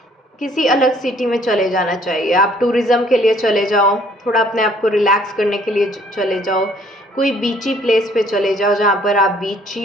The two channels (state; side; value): normal; both; correlation 0.60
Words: किसी अलग सिटी में चले जाना चाहिए। आप टूरिज़्म के लिए चले जाओ, थोड़ा अपने आप को रिलैक्स करने के लिए चले जाओ, कोई बीची प्लेस पे चले जाओ जहाँ पर आप